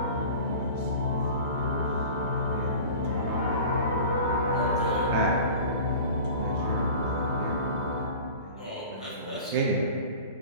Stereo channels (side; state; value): both; inverted; correlation -0.39